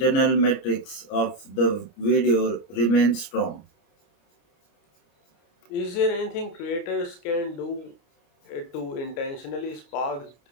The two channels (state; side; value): late; right; 28 ms